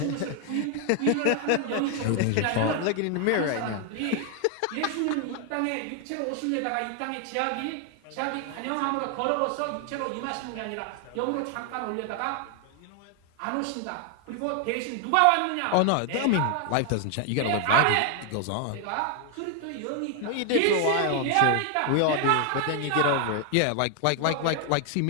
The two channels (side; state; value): both; different; correlation 0.00